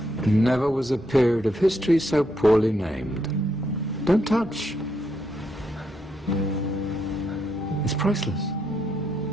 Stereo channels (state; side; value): normal; both; correlation 0.78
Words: Never was a period of history so poorly named. Don't touch. It's priceless.